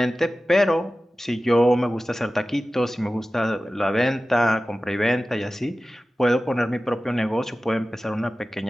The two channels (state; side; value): normal; both; correlation 0.95